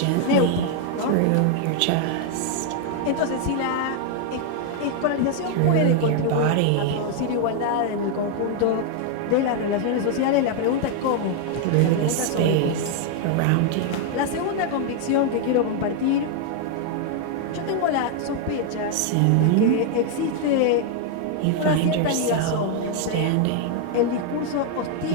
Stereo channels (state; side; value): different; both; correlation 0.00